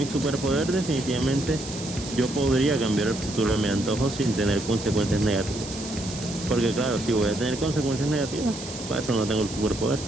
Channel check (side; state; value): right; noise; hiss, 11 dB below the sound